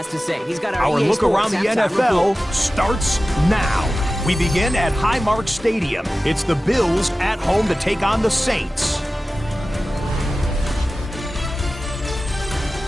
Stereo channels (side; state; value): both; normal; correlation 0.95